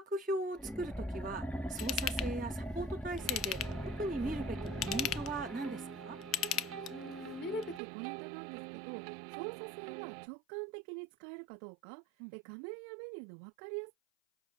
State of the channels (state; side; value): drops out; left; at 7.8 s